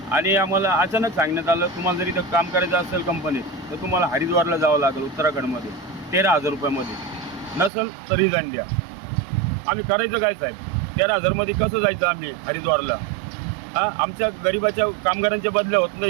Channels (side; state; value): left; drops out; at 7.7 s